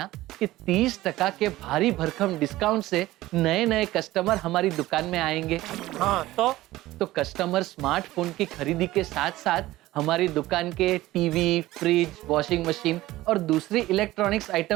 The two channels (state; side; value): quieter; left; 16.8 dB